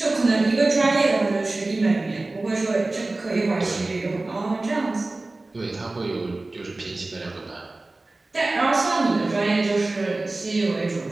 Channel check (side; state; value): left; quieter; 3.1 dB